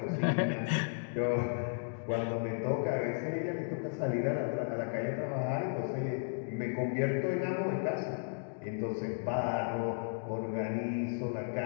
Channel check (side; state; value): right; silent; digital silence